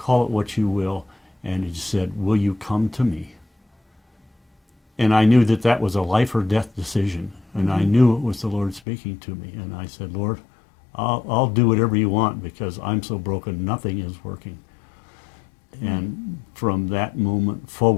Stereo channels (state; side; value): drops out; right; at 8.8 s